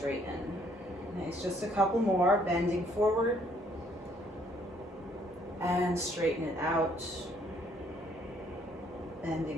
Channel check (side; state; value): both; normal; correlation 0.65